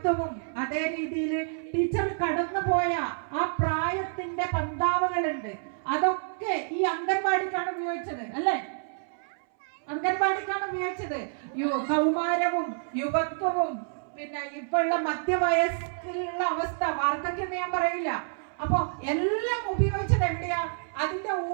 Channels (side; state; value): left; silent; 59 dB below the other